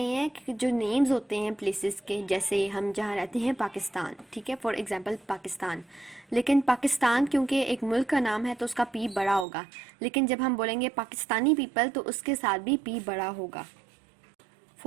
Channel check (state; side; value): drops out; left; at 9.5 s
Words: हैं कि जो names होते हैं places के, जैसे हम जहाँ रहते हैं पाकिस्तान, ठीक है, फॉर एग्जाम्पल पाकिस्तान. लेकिन पाकिस्तान क्योंकि एक मुल्क का नाम है तो उसका P बड़ा होगा. लेकिन जब हम बोलेंगे पाकिस्तानी पीपल तो उसके साथ भी P बड़ा होगा.